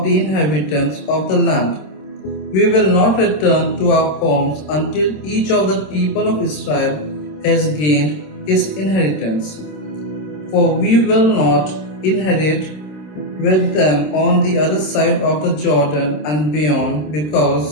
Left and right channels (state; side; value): late; right; 26 ms